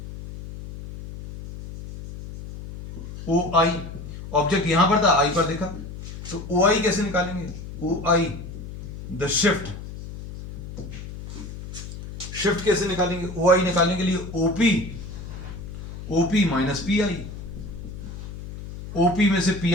OI, object यहां पर था, आई पर देखा, तो OI कैसे निकालेंगे, OI द शिफ्ट, शिफ्ट कैसे निकालेंगे, OI निकालने के लिए OP माइनस PI, OP में से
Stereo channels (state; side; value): noise; left; hum, 11 dB below the sound